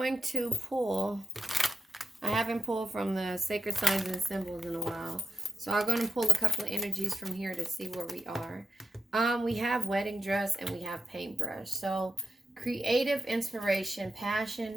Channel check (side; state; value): both; normal; correlation 0.88